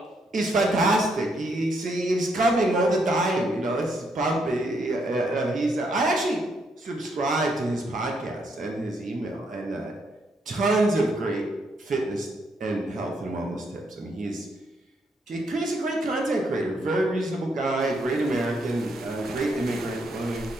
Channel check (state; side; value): normal; both; correlation 0.75